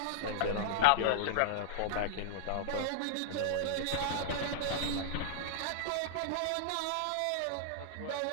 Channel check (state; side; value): different; both; correlation -0.02